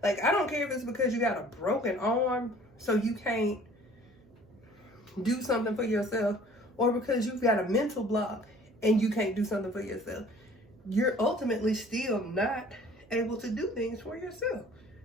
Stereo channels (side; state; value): right; noise; hum, 27 dB below the sound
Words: Like, I don't care if it's because you got a broken arm so you can't do something for yourself, or because you've got a mental block and you can't do something for yourself. You're ultimately still not able to do things for yourself.